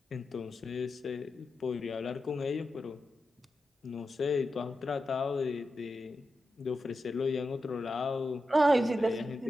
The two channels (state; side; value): normal; both; correlation 0.90